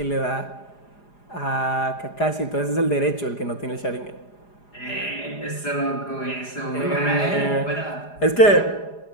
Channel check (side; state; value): right; late; 4.9 ms